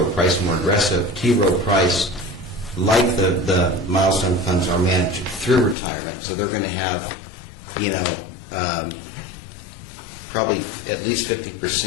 Price more aggressive. T. Rowe Price, like the milestone funds, are managed through retirement, so they're going to have, probably at least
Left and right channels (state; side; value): drops out; right; at 5.8 s